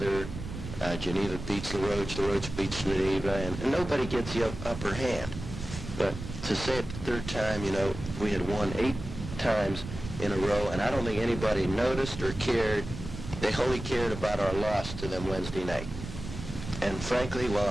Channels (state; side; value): noise; right; rumble, 9 dB below the sound